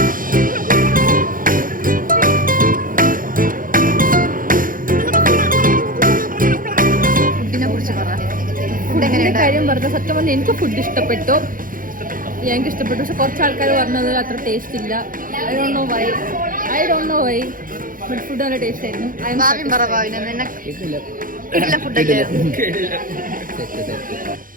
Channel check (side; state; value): left; late; 0.40 ms